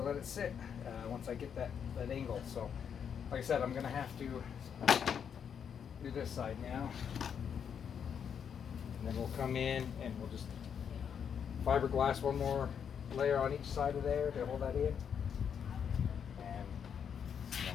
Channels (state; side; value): quieter; right; 7.6 dB